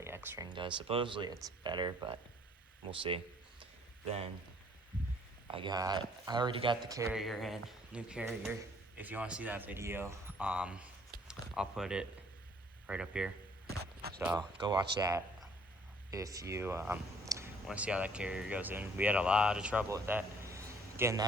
X-ring does. Supposedly it's better, but we'll see. Then I already got the carrier in, new carrier. If you want to see that video, I'll put it right up here. So go watch that if you want to see how that carrier goes in. We had a lot of trouble with that, getting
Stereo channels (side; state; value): both; normal; correlation 0.60